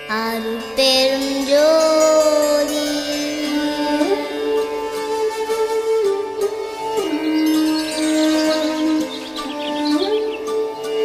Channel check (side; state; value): both; identical; correlation 1.00